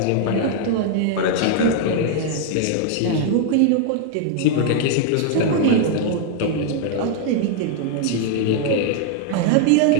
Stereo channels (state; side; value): different; both; correlation 0.00